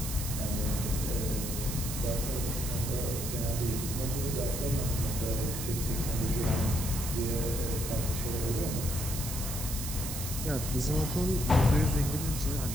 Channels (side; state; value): right; noise; hiss, 5 dB below the sound